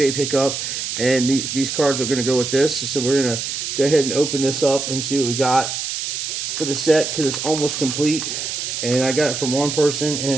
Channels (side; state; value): right; noise; hiss, 4 dB below the sound